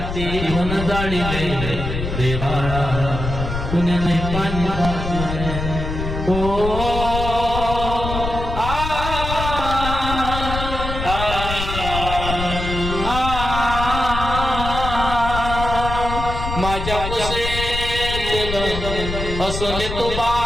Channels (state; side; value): noise; left; rumble, 5 dB below the sound